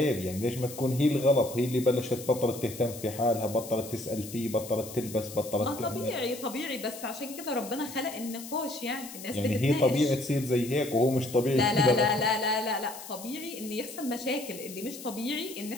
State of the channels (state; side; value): noise; left; hiss, 13 dB below the sound